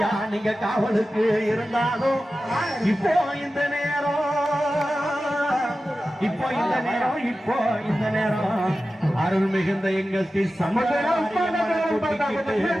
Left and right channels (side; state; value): both; normal; correlation 0.94